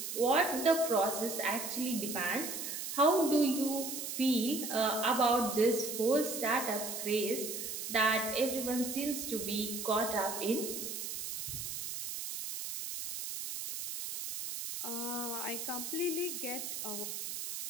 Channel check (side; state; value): right; noise; hiss, 5 dB below the sound